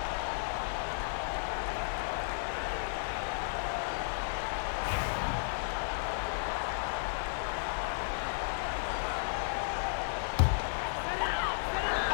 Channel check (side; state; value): right; silent; digital silence